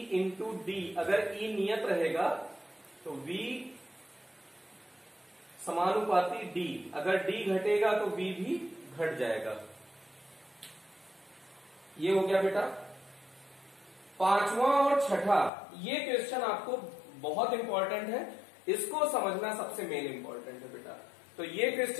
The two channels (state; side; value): drops out; right; at 15.5 s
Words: into D. अगर E नियत रहेगा तो V समानुपाती D, अगर D घटेगा तो V भी घट जाएगा। ये हो गया बेटा। पांचवा और छठा, ये क्वेश्चन आपको बहुत इंपॉर्टेंट है, इसको समझना सबसे मेन इंपॉर्टेंट है बेटा। तो ये